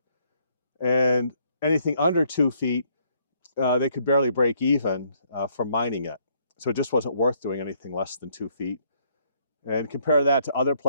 And anything under 2 feet, they could barely break even from mining it. So it just wasn't worth doing anything less than 2 feet. And compare that to other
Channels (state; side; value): inverted; both; correlation -0.68